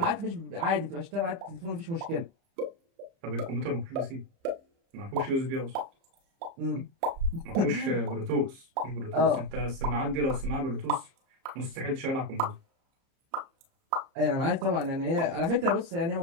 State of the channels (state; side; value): late; left; 30 ms